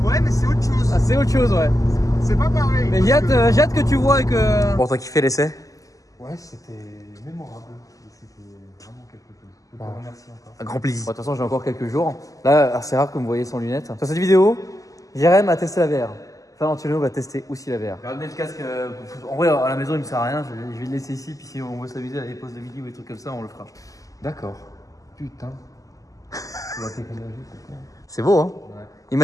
Ouais, mais c'est autre chose. Ah, c'est autre chose, ouais. C'est pas pareil. Mais j'ai hâte que tu vois et que. Bon, t'as kiffé l'essai? Ouais, c'était mémorable. C'était vraiment quelque chose. Je te remercie encore. Un grand plaisir. Bon, de toute façon, j'ai encore quelques jours. Là, c'est rare que vous me voyez sans lunettes. Sur cette vidéo, Jérém a testé la VR. Valentino va tester aussi la VR. J'ai ramené le casque. En vrai, à la maison, il me sert à rien. Je vais le laisser ici. Puis si on veut s'amuser à des pauses de midi ou des trucs comme ça, on le fera. D'accord. Putain. La technologie, c'est quoi? C'est beau, hein? Ouais.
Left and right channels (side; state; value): right; late; 0.17 ms